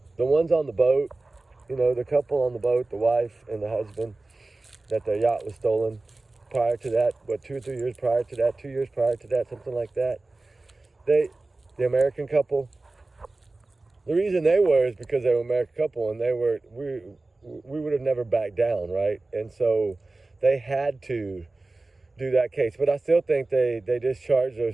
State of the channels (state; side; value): quieter; left; 3.2 dB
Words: The ones on the boat, you know, the couple on the boat, the wife and the husband, that their yacht was stolen prior to that, 2 or 3 years prior to that, 2 years prior to that, something like that. The American couple, the reason they were is because they were an American couple, and we would have never backed down, right? And so they had to do that case. But I still think they discharged